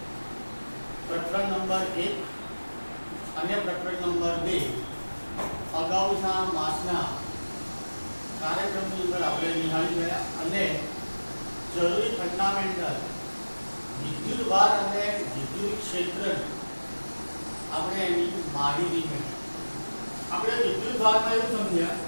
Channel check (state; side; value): inverted; both; correlation -1.00